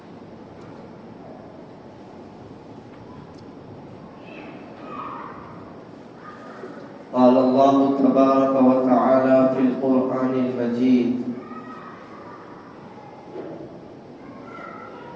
قال الله تبارك وتعالى في القرآن المجيد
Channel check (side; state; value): both; identical; correlation 1.00